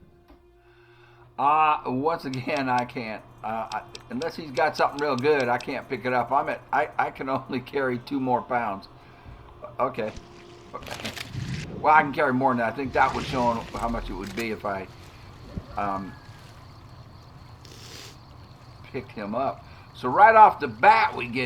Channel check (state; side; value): identical; both; correlation 1.00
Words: Once again, I can't. Unless he's got something real good, I can't pick it up. I can only carry 2 more pounds. Okay. Well, I can carry more than that. I think that would show how much it would be if I picked him up. So right off the bat, we